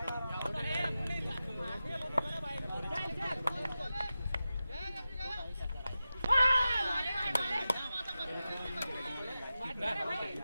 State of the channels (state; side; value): inverted; both; correlation -0.93